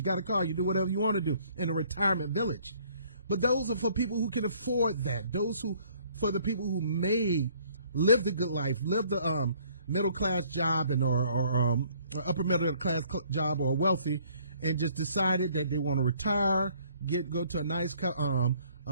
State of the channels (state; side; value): inverted; both; correlation -0.60